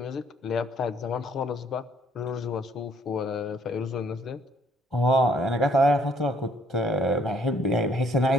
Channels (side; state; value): both; normal; correlation 0.64